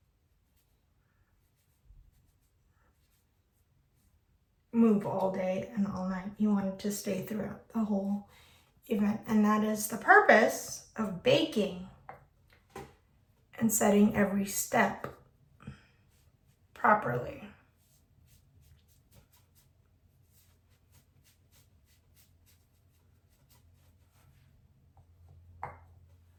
move all day and all night. You want it to stay throughout the whole event. And that is the purpose of baking and setting every step properly.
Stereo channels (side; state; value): both; identical; correlation 1.00